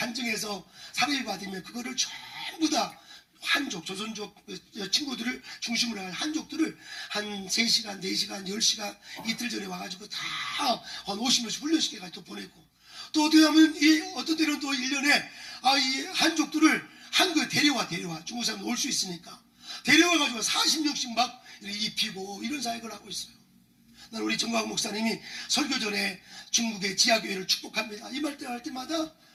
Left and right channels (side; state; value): both; identical; correlation 1.00